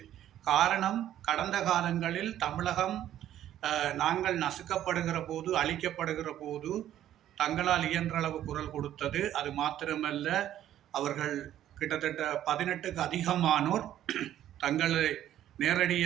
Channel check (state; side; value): quieter; left; 11.8 dB